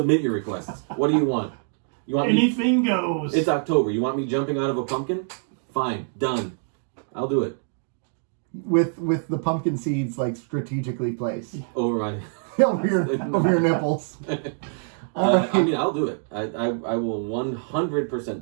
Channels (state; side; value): silent; left; digital silence